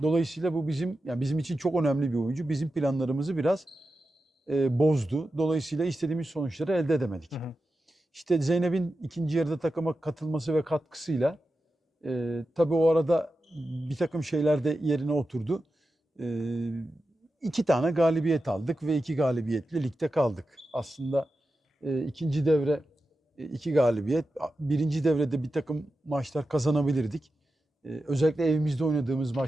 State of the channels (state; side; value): normal; both; correlation 0.91